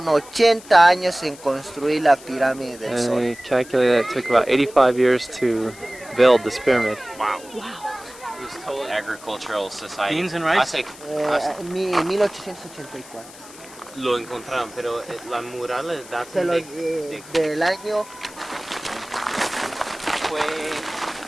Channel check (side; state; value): left; noise; hiss, 19 dB below the sound